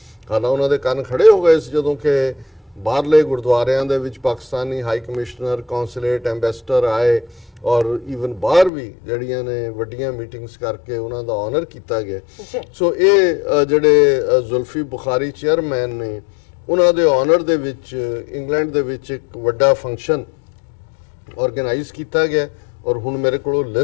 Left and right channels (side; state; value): right; drops out; at 8.7 s